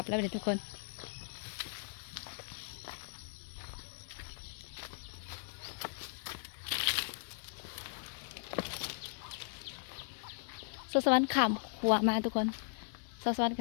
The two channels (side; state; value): right; silent; 52 dB below the other